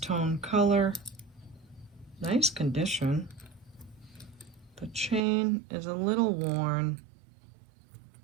color. Nice condition. The chain is a little worn.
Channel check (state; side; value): drops out; left; at 5.2 s